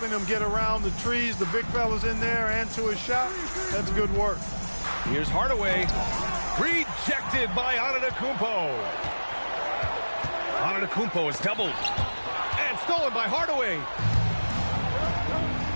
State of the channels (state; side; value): inverted; both; correlation -1.00